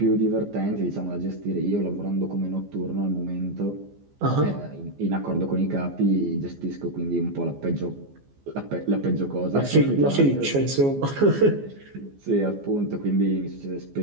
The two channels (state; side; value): late; left; 14 ms